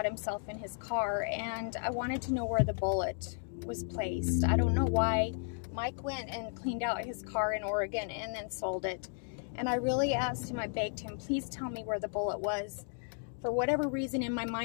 himself in his car, and I wanted to know where the bullet was placed. I don't know why. Mike went and cleaned out his car in Oregon and then sold it, and I really asked him, I begged him, please tell me where the bullet was. For whatever reason in my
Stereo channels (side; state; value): right; silent; 55 dB below the other